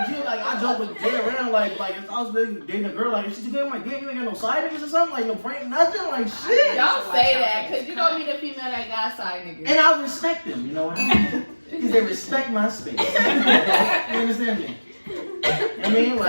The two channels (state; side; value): inverted; both; correlation -1.00